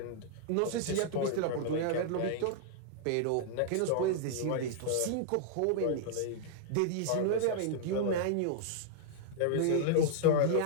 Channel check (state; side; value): different; both; correlation -0.01